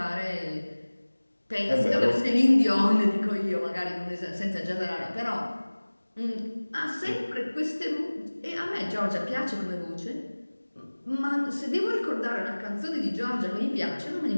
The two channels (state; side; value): inverted; both; correlation -1.00